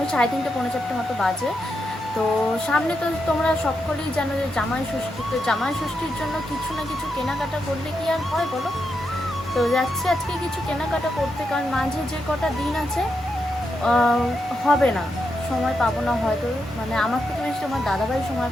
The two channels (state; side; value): normal; both; correlation 0.84